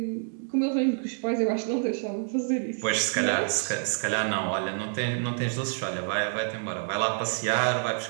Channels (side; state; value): left; silent; 60 dB below the other